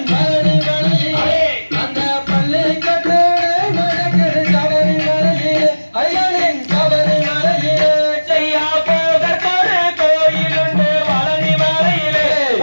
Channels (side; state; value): both; inverted; correlation -1.00